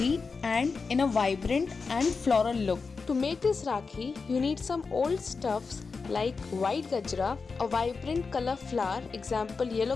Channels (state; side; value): quieter; right; 4.7 dB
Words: and in a vibrant and floral look. To make this Rakhi, you need some old stuffs like white gajra, a vibrant color flower, example yellow